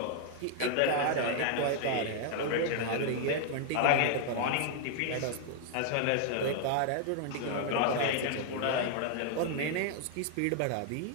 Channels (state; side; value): different; both; correlation 0.00